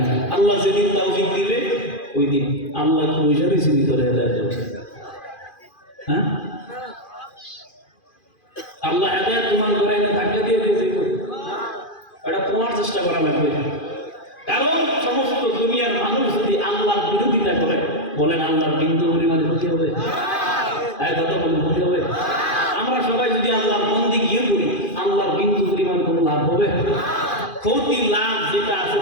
আল্লাহ যেদিন তৌফিক দিবে ওই দিন আল্লাহ বসে রয়েছে ভিতরে হেদায়েত। হ্যাঁ, আল্লাহ হেদায়েত তোমার ঘরে এনে ধাক্কা দিয়ে দিয়েছে, এটা তোমার চেষ্টা করা লাগবে। কারণ সমস্ত দুনিয়ার মানুষ যদি আল্লাহর বিরোধিতা করে, বলেন আল্লাহর বিন্দু পরিমাণে ক্ষতি হবে? কথা বলেন, ক্ষতি হবে? আমরা সবাই যদি আল্লাহর বন্দেগী করি, আল্লাহর বিন্দু পরিমাণ কোনো লাভ হবে? ক্ষতি লাভ যেটা আছে,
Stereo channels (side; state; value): right; late; 2.4 ms